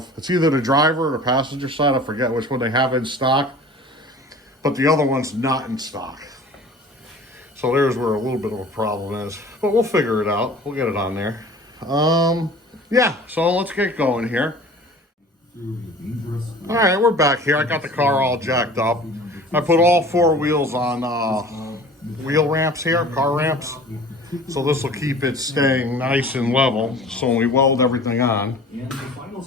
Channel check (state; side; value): normal; both; correlation 0.44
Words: it's either the driver or the passenger side. I forget which one they have in stock, but the other one's not in stock. So there's where a little bit of a problem is, but we'll figure it out. We'll get it on there. Yeah, so let's get going here. All right, we're back here. I got the car all jacked up. I put all four wheels on wheel ramps here, car ramps. So this will keep it staying nice and level. So when we weld everything on,